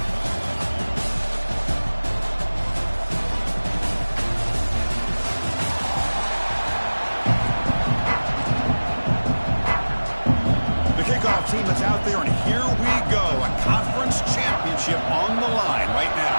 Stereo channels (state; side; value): inverted; both; correlation -1.00